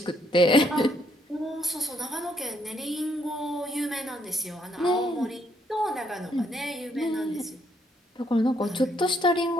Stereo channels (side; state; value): both; normal; correlation 0.71